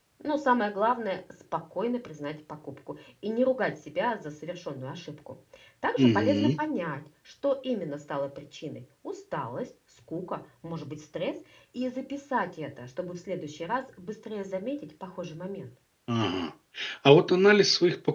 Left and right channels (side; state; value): both; identical; correlation 1.00